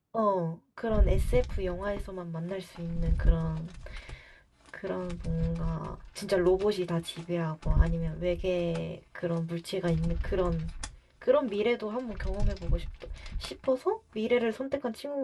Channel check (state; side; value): identical; both; correlation 1.00